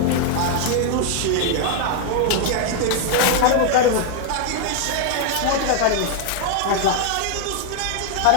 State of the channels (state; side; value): different; both; correlation 0.00